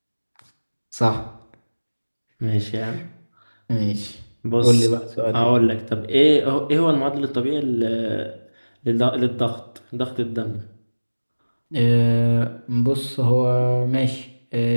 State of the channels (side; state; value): both; inverted; correlation -1.00